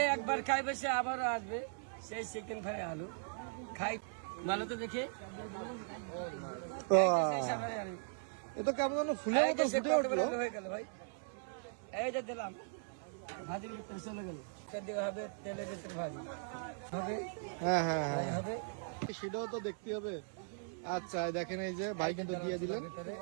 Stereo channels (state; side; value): silent; left; 52 dB below the other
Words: একবার খাইবে সে আবারও আসবে, সেই চিকেন ফ্রাই আলু খাই। ভালো তো দেখে এটা কেমন যেন ফুলের মতো ফুটে উঠলো। হয়ে গেল ভাই, এই যে দিলাম, ভাজির ভিতরে চলে গেল। দেওয়া হবে তেলের ভিতরে ভাজি হবে। হ্যাঁ হ্যাঁ হ্যাঁ, হবে সেটাও তো দেখতে হবে। আচ্ছা দেখেন, এই যে ভাই কিন্তু দিয়ে দিলেন।